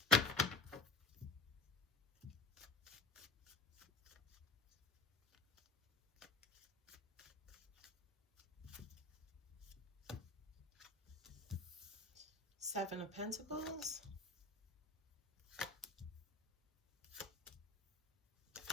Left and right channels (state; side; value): quieter; right; 3.4 dB